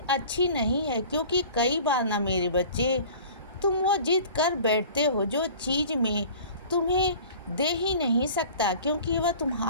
अच्छी नहीं है। क्योंकि कई बार ना मेरे बच्चे, तुम वो जिद कर बैठते हो जो चीज़ में तुम्हें दे ही नहीं सकता। क्योंकि वह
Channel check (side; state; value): both; inverted; correlation -0.44